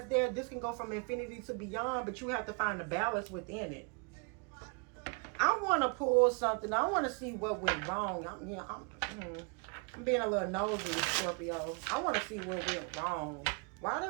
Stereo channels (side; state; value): left; quieter; 35.0 dB